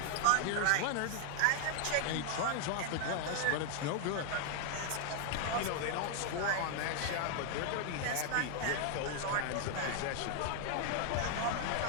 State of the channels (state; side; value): different; both; correlation 0.00